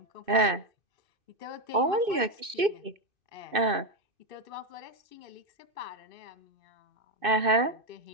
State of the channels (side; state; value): left; late; 2.6 ms